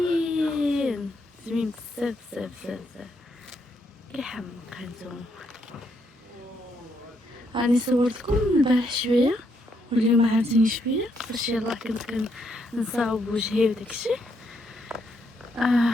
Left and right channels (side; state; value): both; normal; correlation 0.76